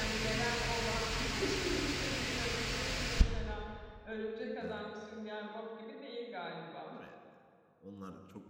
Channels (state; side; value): identical; both; correlation 1.00